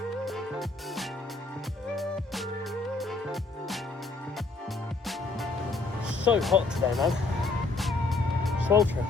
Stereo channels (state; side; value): quieter; right; 3.6 dB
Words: So hot today, man. Sweltering.